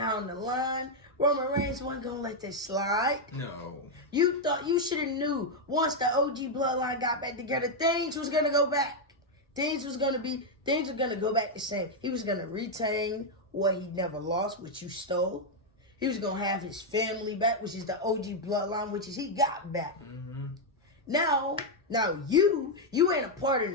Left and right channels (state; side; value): normal; both; correlation 0.00